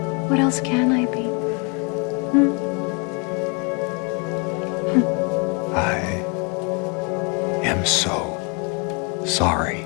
What else can I be? I am so sorry,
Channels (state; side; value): quieter; right; 32.0 dB